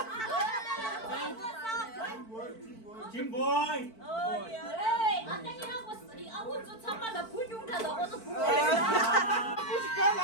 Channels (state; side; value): late; right; 4.5 ms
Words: 김보이. 아땡이라고 쓰리 아우 저 참아 나 불용다 넣어서 부고 무지가